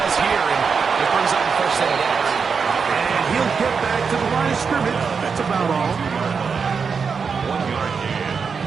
here, and it brings up the first set of downs. And he'll get back to the line of scrimmage. That's about all. 1 yard gain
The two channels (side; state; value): left; quieter; 5.7 dB